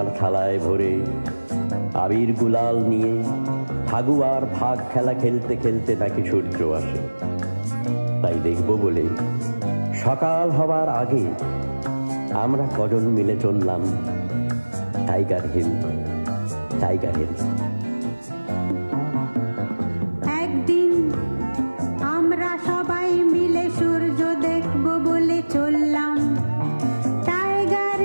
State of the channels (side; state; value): both; inverted; correlation -1.00